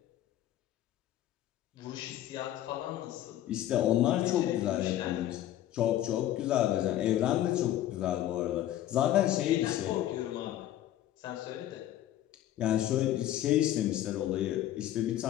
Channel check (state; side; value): quieter; right; 12.8 dB